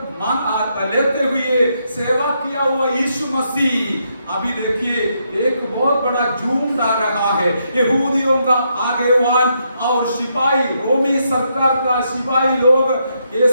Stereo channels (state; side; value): inverted; both; correlation -0.78